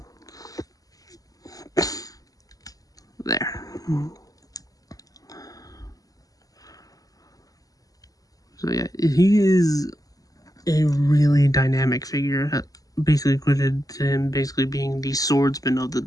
There. So yeah, he is a really dynamic figure, basically equated to him basically being the swordsman of the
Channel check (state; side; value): late; right; 0.17 ms